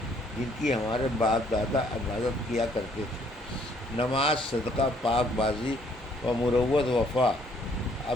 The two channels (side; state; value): both; normal; correlation 0.64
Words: جن کی ہمارے باپ دادا عبادت کیا کرتے تھے۔ نماز، صدقہ، پاک بازی و مروت، وفا،